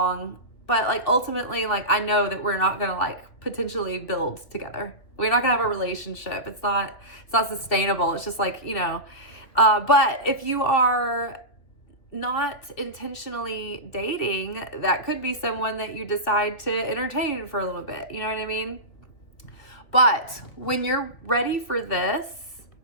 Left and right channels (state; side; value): late; right; 3.0 ms